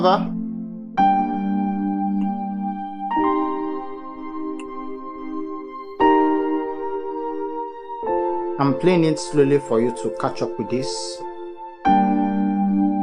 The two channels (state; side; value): identical; both; correlation 1.00